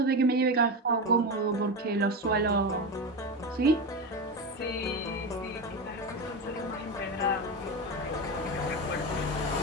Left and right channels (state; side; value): normal; both; correlation 0.19